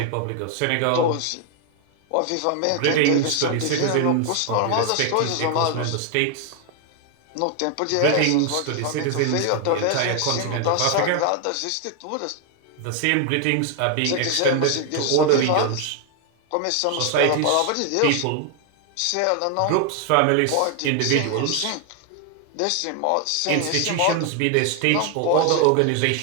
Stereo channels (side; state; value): both; different; correlation 0.00